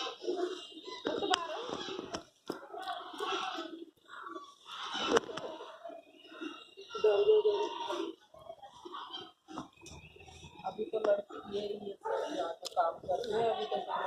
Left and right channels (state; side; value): identical; both; correlation 1.00